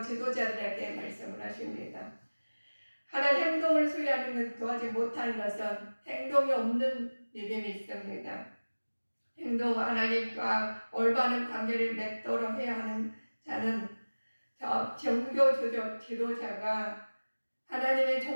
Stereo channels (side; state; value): both; inverted; correlation -1.00